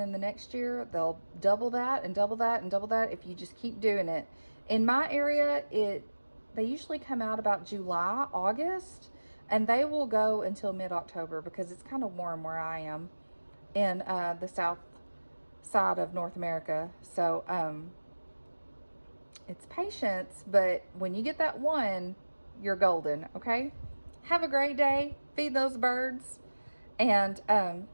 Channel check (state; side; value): inverted; both; correlation -1.00